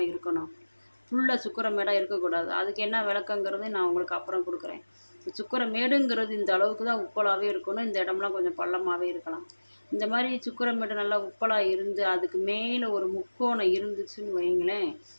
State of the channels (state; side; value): inverted; both; correlation -1.00